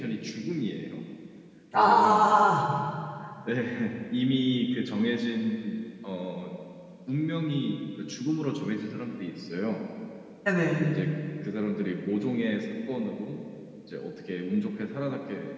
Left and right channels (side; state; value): both; identical; correlation 1.00